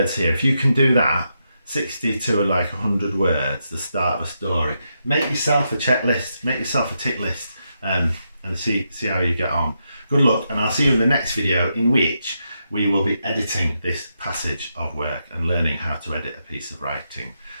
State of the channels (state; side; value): inverted; both; correlation -0.83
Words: here. If you can do that, 60 to like 100 words, the start of a story, make yourself a checklist, make yourself a tick list, and see how you get on. Good luck, and I'll see you in the next video, in which we will be editing this passage of work and learning how to edit a piece of writing.